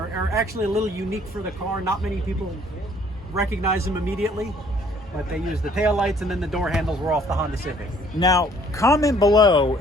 actually a little unique for the car. Not many people recognize them immediately, but they use the taillights, and then the door handles were off the Honda Civic. Now, comment below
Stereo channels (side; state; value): both; normal; correlation 0.60